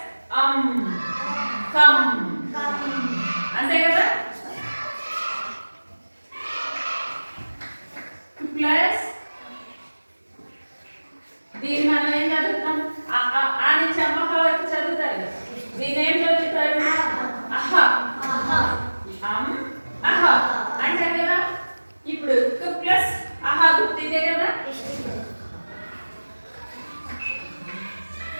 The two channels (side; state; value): both; inverted; correlation -1.00